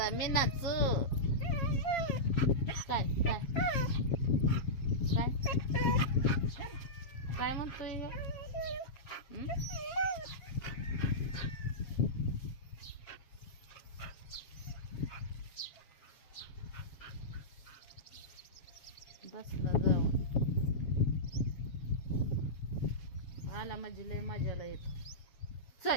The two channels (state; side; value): late; right; 7.3 ms